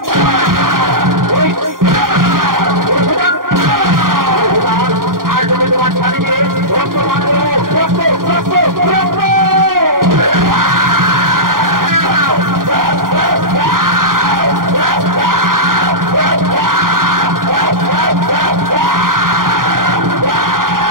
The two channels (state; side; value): late; left; 0.91 ms